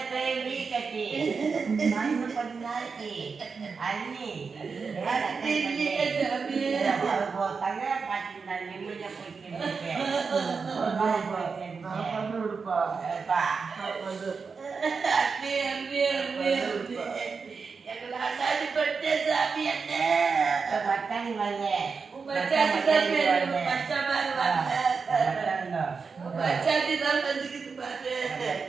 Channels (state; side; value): quieter; left; 5.1 dB